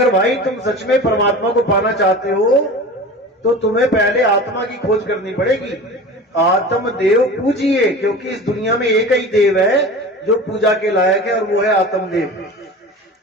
भाई तुम सच में परमात्मा को पाना चाहते हो तो तुम्हें पहले आत्मा की खोज करनी पड़ेगी। आत्म देव पूजिए, क्योंकि इस दुनिया में एक ही देव है जो पूजा के लायक है, और वो है आत्मदेव।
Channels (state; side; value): normal; both; correlation 0.35